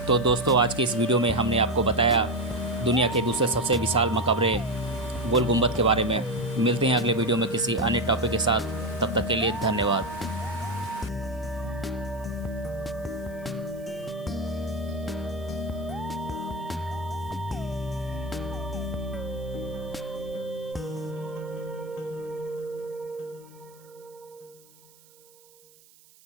तो दोस्तों, आज के इस वीडियो में हमने आपको बताया दुनिया के दूसरे सबसे विशाल मकबरे गोल गुंबद के बारे में। मिलते हैं अगले वीडियो में किसी अन्य टॉपिक के साथ, तब तक के लिए धन्यवाद।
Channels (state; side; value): noise; right; hiss, 27 dB below the sound